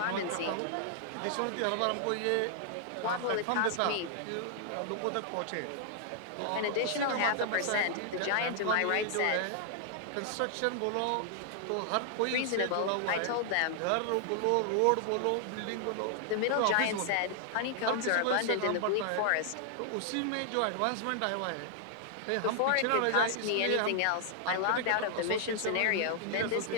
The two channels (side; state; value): both; different; correlation -0.01